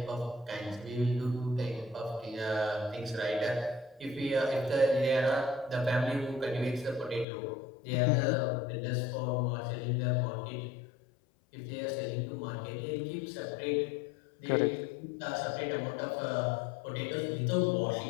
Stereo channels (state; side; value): drops out; right; at 7.2 s